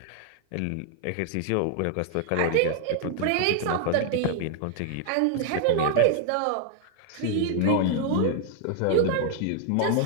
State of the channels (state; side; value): different; both; correlation 0.00